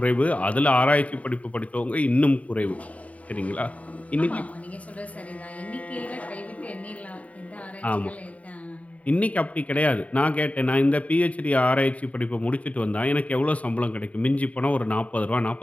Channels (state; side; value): late; right; 0.068 ms